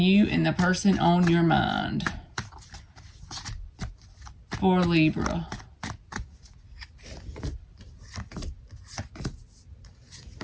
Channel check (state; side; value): identical; both; correlation 1.00